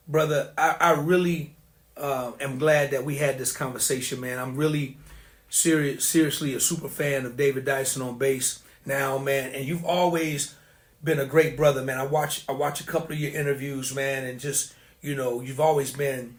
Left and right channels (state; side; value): identical; both; correlation 1.00